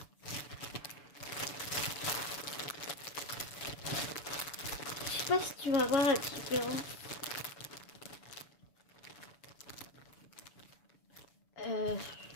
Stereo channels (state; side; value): late; right; 6.9 ms